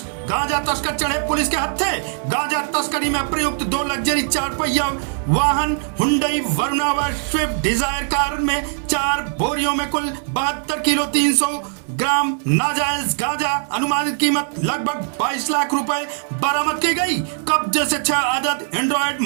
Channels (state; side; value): silent; left; 60 dB below the other